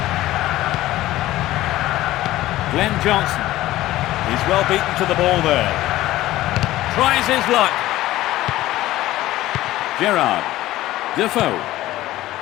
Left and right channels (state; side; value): quieter; right; 15.8 dB